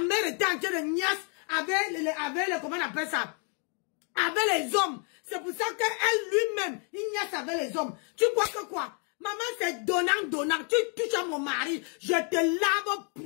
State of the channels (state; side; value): quieter; right; 39.2 dB